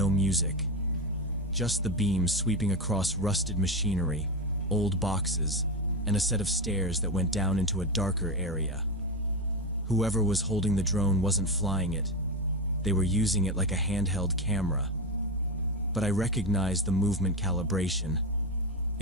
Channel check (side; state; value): both; normal; correlation 0.15